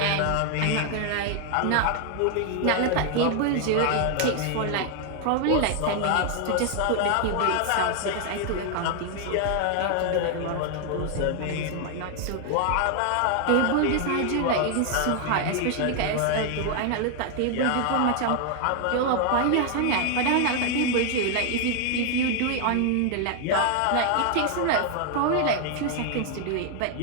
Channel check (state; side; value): different; both; correlation 0.00